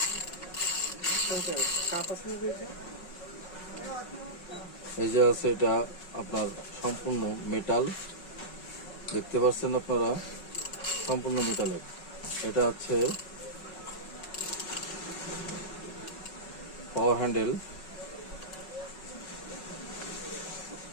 এই যে আছে, এটা আপনার সম্পূর্ণ মেটাল, দেখতে পাচ্ছেন আপনারা, সম্পূর্ণ মেটালের। এটা হচ্ছে পাওয়ার হ্যান্ডেল,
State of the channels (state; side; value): late; right; 5.4 ms